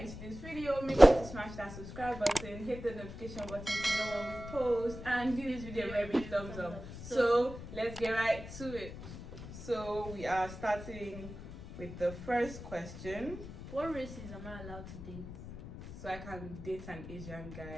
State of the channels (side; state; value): left; noise; rumble, 11 dB below the sound